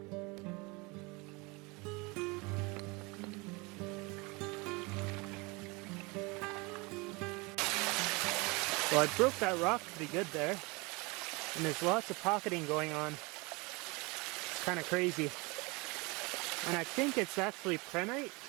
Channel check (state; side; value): quieter; left; 26.7 dB